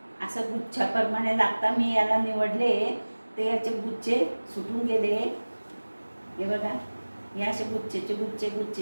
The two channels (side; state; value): both; inverted; correlation -1.00